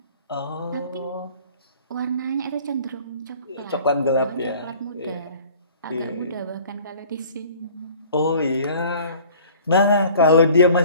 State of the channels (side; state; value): both; inverted; correlation -0.48